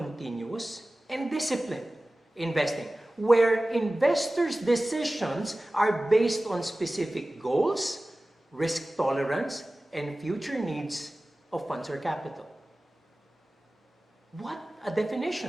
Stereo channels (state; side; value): normal; both; correlation 0.97